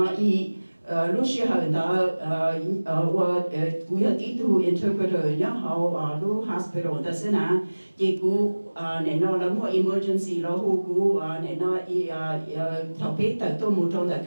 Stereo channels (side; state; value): both; inverted; correlation -1.00